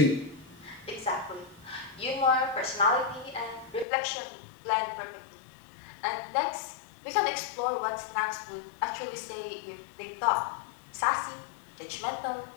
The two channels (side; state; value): right; drops out; at 3.9 s